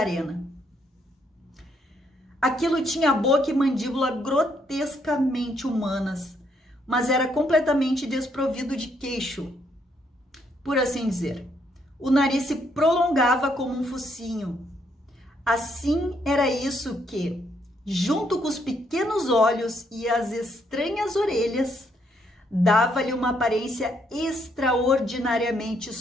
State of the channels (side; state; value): both; normal; correlation 0.73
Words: Aquilo tinha boca e mandíbula grotescamente humanas, mas era completamente desprovido de queixo, por assim dizer. O nariz se prolongava como um focinho. Assim era isso que, junto com os pequenos olhos e as estranhas orelhas, dava-lhe uma aparência extraordinariamente